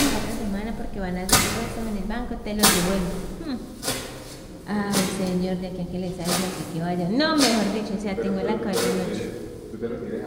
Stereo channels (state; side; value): identical; both; correlation 1.00